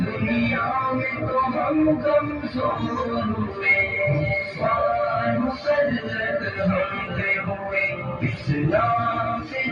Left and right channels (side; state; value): both; identical; correlation 1.00